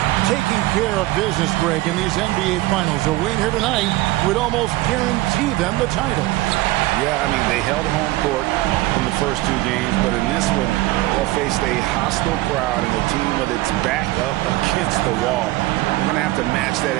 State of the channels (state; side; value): quieter; left; 18.5 dB